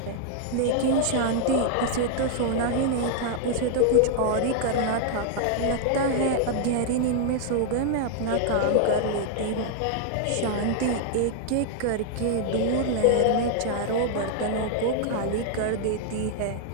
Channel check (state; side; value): different; both; correlation -0.01